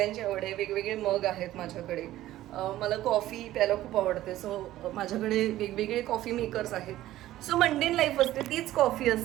आवड आहे. वेगवेगळे मग आहेत माझ्याकडे. मला कॉफी प्यायला खूप आवडते. सो माझ्याकडे वेगवेगळे कॉफी मेकर्स आहेत. सो मंडेन लाईफ असते, तीच कॉफी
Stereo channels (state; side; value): quieter; left; 14.6 dB